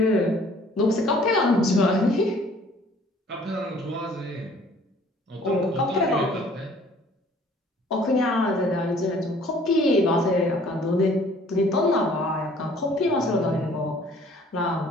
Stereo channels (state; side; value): normal; both; correlation 0.55